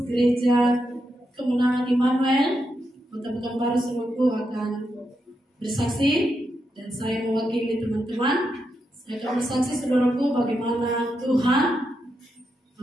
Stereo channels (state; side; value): normal; both; correlation 0.84